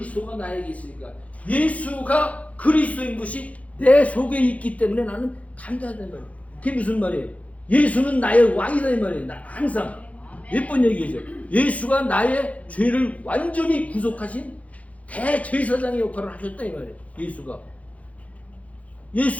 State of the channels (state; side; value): late; right; 0.067 ms